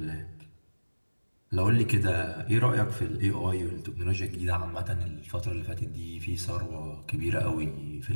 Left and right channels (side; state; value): both; inverted; correlation -1.00